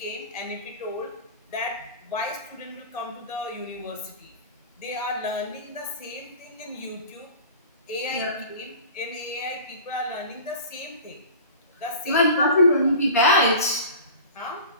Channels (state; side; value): inverted; both; correlation -0.38